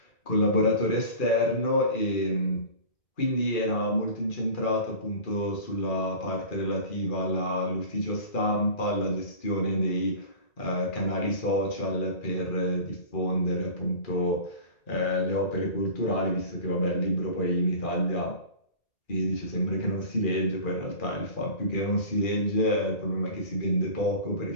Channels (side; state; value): right; late; 2.4 ms